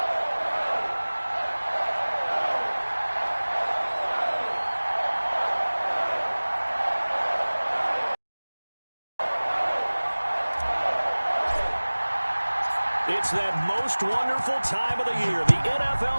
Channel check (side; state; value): both; inverted; correlation -1.00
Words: It's that most wonderful time of the year, the